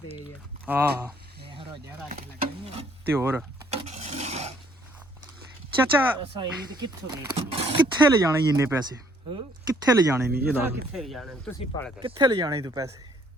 ਹੈ। ਹਾਂ ਇਹ ਰੋਜ਼ਾ ਰੱਖ ਲੱਗਣੀ ਤੇ ਹੋਰ ਚਾਚਾ ਅਸਾਂ ਇਹ ਕਿੱਥੋਂ ਦੇ ਕਿੱਥੇ ਲੈ ਜਾਣੇ ਇੰਨੇ ਪੈਸੇ? ਕਿੱਥੇ ਲੈ ਜਾਣੇ ਨਹੀਂ ਇਹ ਦੱਸ। ਕਿੱਥੇ ਜਾਣੇ ਤੁਸੀਂ ਪੜ ਗਏ ਕਿੱਥੇ ਲੈ ਜਾਣੇ ਤੂੰ ਪੈਸੇ?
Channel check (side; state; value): both; normal; correlation 0.63